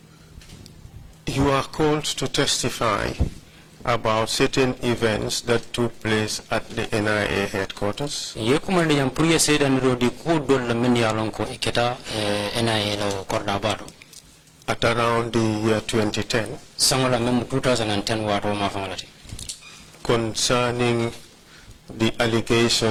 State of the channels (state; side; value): identical; both; correlation 1.00